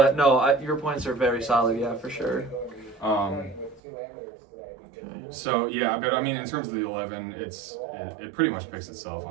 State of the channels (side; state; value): left; drops out; at 3.8 s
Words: no, your points are very solid. Yeah, for sure. So yeah, but I mean, in terms of the 11, it pretty much picks itself,